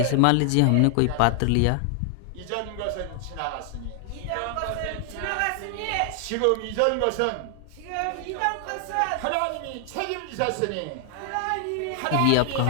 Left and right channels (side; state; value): both; different; correlation 0.00